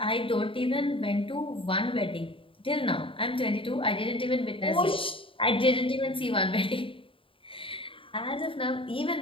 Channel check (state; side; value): late; right; 0.25 ms